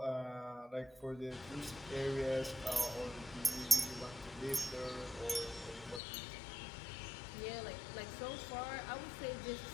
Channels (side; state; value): right; drops out; at 6.0 s